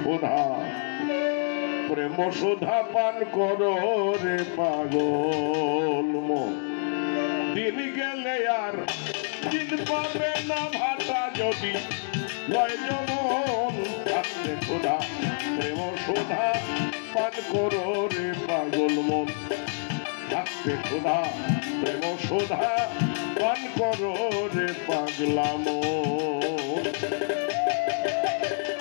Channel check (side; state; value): right; silent; digital silence